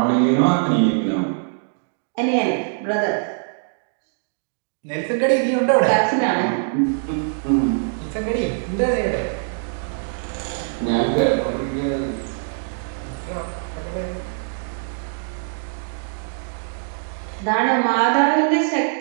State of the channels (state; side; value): silent; left; digital silence